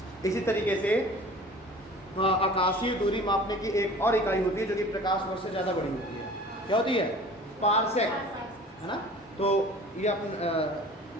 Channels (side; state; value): both; normal; correlation 0.44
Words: इसी तरीके से आकाशीय दूरी मापने की एक और इकाई होती है जो कि प्रकाश वर्ष से ज़्यादा बड़ी होती है। क्या होती है? पारसेक, है ना। तो ये अपन